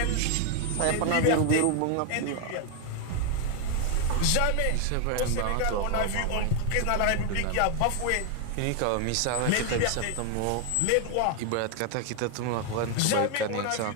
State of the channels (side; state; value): both; different; correlation 0.01